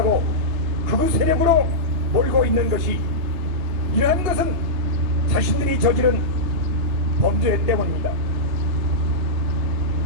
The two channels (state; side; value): late; left; 3.3 ms